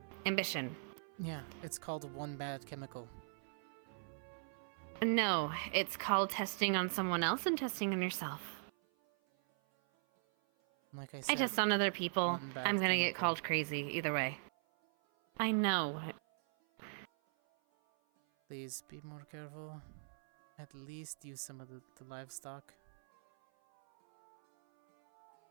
ambition. Yeah, it's called one bad chemical. No, it's called testing on someone else and testing on yourself. Like I I said, test on other people. one bad I'm gonna get chemical. called crazy either way. I know. Please be more careful. At least use some of the livestock.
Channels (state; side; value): silent; left; 51 dB below the other